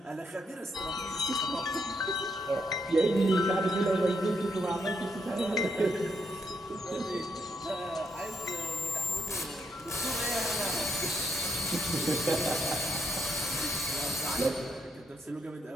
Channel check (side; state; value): both; normal; correlation 0.77